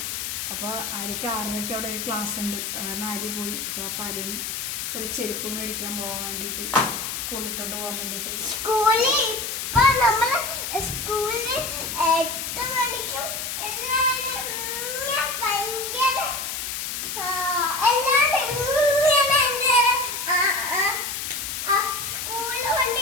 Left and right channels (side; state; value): left; noise; hiss, 4 dB below the sound